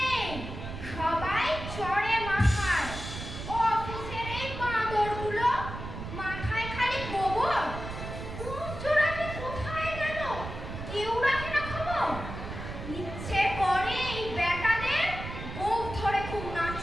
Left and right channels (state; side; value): noise; right; rumble, 8 dB below the sound